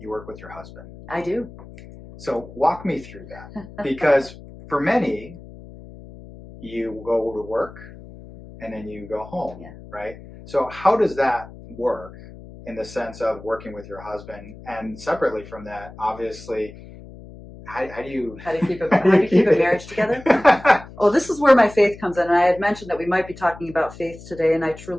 work with your husband. I do. So walk me through that, because for many, you go to work and then you go home, right? So how does that work in the sense of working with your husband? And separately from that, obviously, how do you keep a marriage together? Oh, this is where my faith comes in. And I had mentioned that we might be talking about faith today, and I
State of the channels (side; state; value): left; noise; hum, 17 dB below the sound